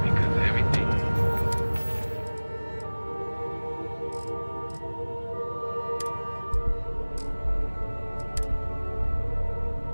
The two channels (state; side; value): inverted; both; correlation -1.00